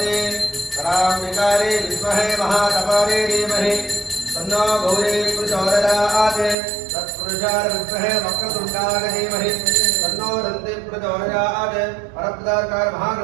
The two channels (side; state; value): left; drops out; at 6.6 s